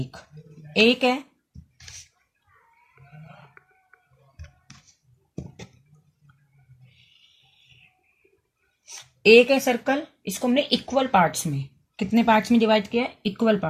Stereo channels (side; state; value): both; identical; correlation 1.00